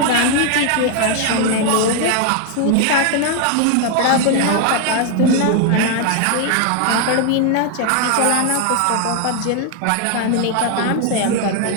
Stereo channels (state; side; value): different; both; correlation 0.00